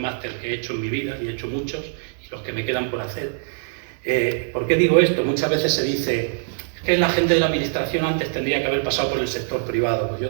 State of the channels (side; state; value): left; silent; digital silence